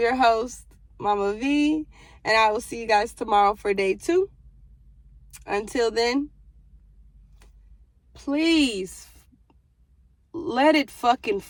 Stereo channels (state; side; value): identical; both; correlation 1.00